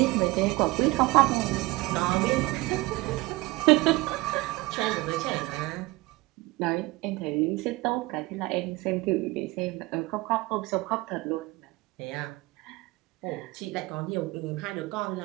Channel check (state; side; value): quieter; left; 21.8 dB